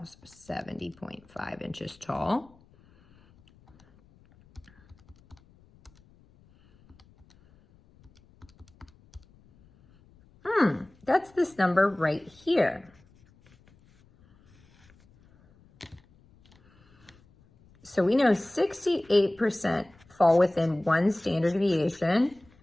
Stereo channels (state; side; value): noise; left; rumble, 29 dB below the sound